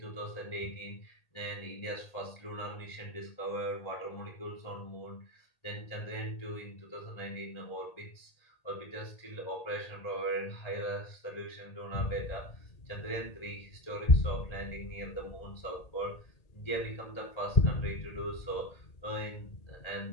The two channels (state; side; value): late; right; 1.8 ms